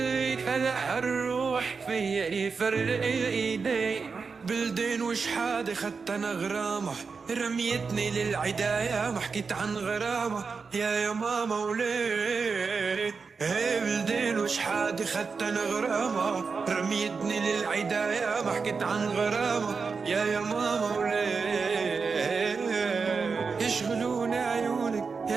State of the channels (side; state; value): left; quieter; 5.0 dB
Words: هلا هالروح فيا يفرق ايدي بلدين وش حادي خدت انا غرامة رميتني للعداية ما حكيت عن غرامة يا ماما وليه بلدين وش حادي خدت انا غرامة رميتني للعداية ما حكيت عن غرامة يا ماما وليه يشغلوني عيونك